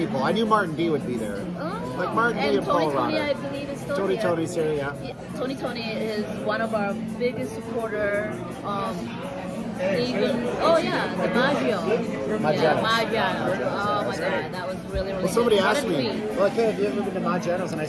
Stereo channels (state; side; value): identical; both; correlation 1.00